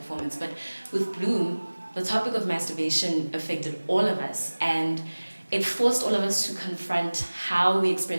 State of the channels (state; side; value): inverted; both; correlation -1.00